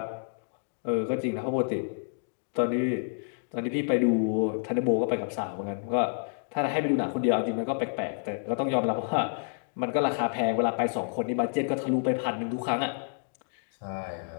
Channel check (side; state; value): right; silent; digital silence